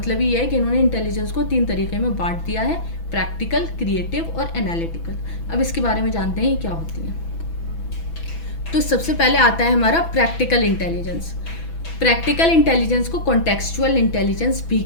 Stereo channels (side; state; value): right; late; 6.0 ms